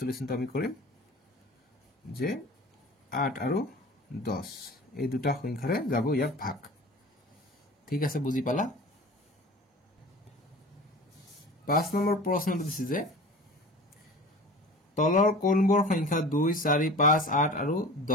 আমি কৰিম যে 8 আৰু 10 এই দুটা সংখ্যাৰে যাব ইয়াক ভাগ ঠিক আছে বুজি পালা 5 নম্বৰ প্ৰশ্নটো দিছে যে তলৰ কোনবোৰ সংখ্যা 2 4 5 8 আৰু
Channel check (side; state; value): both; normal; correlation 0.39